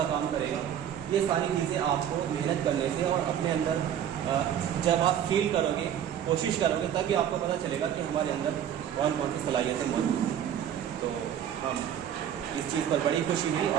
काम करेगा। ये सारी चीज़ें आपको मेहनत करने से और अपने अंदर जब आप फील करोगे, कोशिश करोगे, तभी आपको पता चलेगा कि हमारे अंदर कौन कौन सी सलाहियतें मौजूद हैं। तो हम इस चीज़ पर बड़ी खुशी हुई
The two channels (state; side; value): quieter; left; 9.8 dB